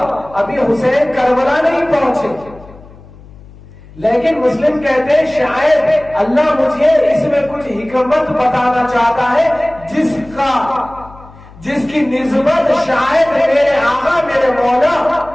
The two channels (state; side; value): noise; left; hum, 21 dB below the sound